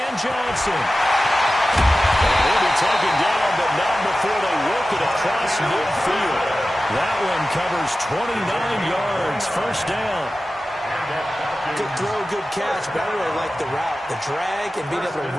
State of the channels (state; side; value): normal; both; correlation 0.95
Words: Johnson. He'll be taken down, but not before they work it across midfield. That one covers 29 yards, first down. Good throw, good catch. But I really like the route. The drag and being able to